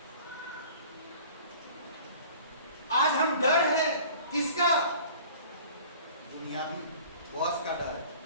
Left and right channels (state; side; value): inverted; both; correlation -0.46